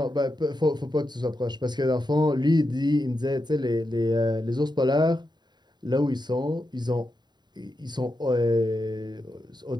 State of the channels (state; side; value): late; left; 0.21 ms